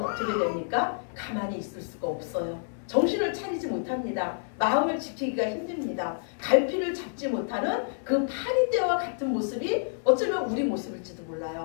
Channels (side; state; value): right; silent; digital silence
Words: 됩니까? 가만히 있을 수가 없어요. 정신을 차리지 못합니다. 마음을 지키기가 힘듭니다. 갈피를 잡지 못하는 그 파리떼와 같은 모습이 어쩌면 우리 모습일지도